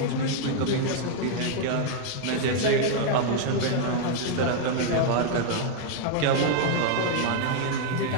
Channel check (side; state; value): both; different; correlation 0.00